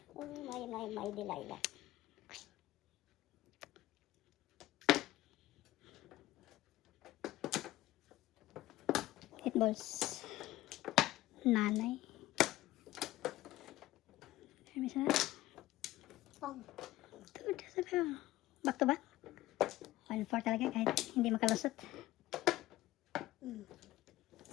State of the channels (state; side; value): quieter; right; 16.4 dB